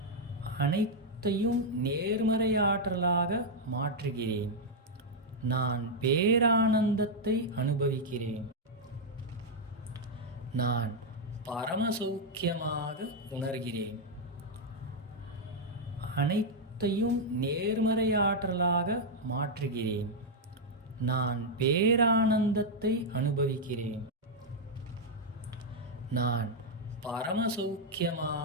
அனைத்தையும் நேர்மறையாற்றலாக மாற்றுகிறேன். நான் பேரானந்தத்தை அனுபவிக்கிறேன். நான் பரமசௌக்கியமாக உணர்கிறேன். அனைத்தையும் நேர்மறையாற்றலாக மாற்றுகிறேன். நான் பேரானந்தத்தை அனுபவிக்கிறேன். நான்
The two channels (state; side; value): normal; both; correlation -0.02